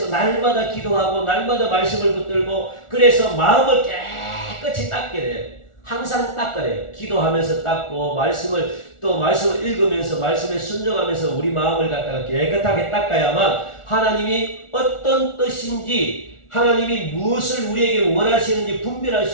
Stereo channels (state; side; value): late; right; 1.4 ms